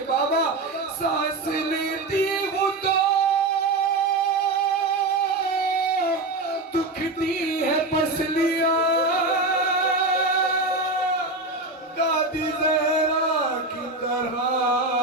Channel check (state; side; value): quieter; left; 3.1 dB